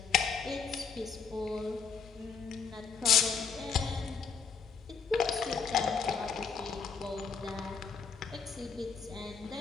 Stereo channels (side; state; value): right; quieter; 5.9 dB